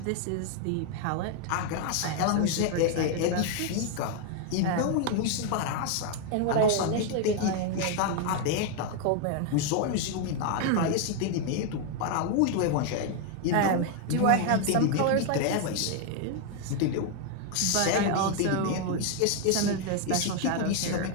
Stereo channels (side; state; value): both; different; correlation 0.00